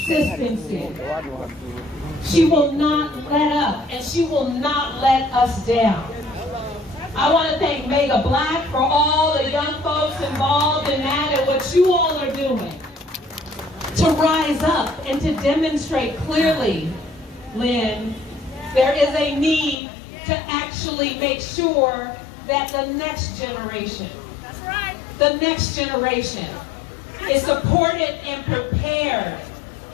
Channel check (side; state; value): right; drops out; at 19.8 s